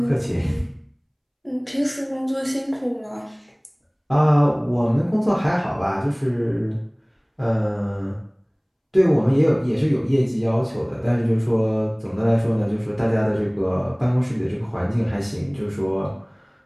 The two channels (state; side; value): identical; both; correlation 1.00